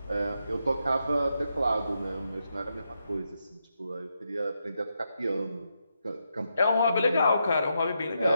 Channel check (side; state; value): both; inverted; correlation -0.83